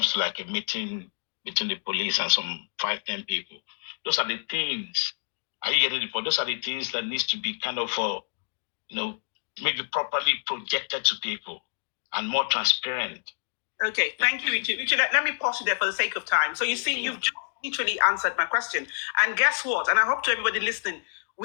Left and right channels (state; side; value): silent; right; digital silence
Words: to like a meeting between the police and some 5-10 people. Those are the things. Are you getting the point? Those are the things that needs to be kind of maybe properly projected to people and more transparent. Okay, thank you, Richard. Richard, let me pause you there for the sake of time. So you see, you've just literally answered my question. And guess what? And I hope to everybody listening,